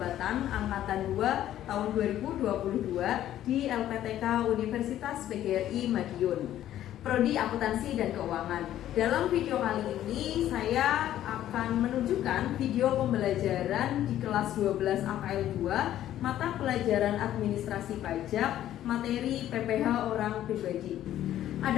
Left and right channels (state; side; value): quieter; right; 12.3 dB